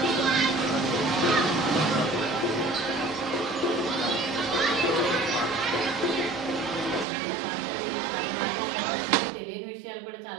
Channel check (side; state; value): left; drops out; at 7.1 s